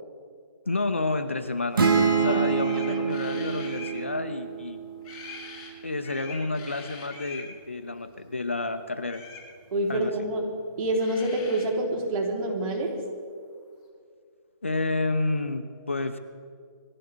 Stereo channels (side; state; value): both; inverted; correlation -0.59